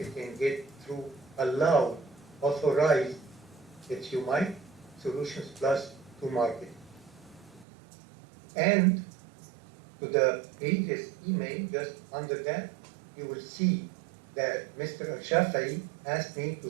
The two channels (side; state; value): left; drops out; at 7.7 s